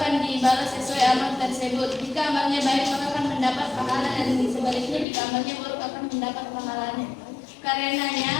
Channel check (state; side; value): drops out; right; at 5.1 s